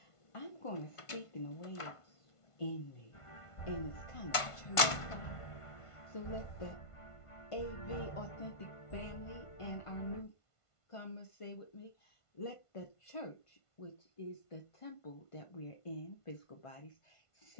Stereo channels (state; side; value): late; right; 1.5 ms